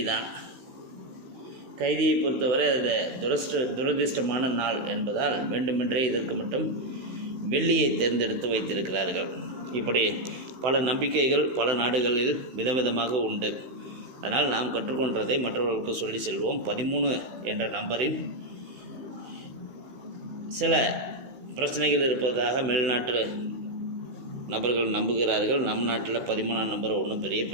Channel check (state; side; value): late; left; 15 ms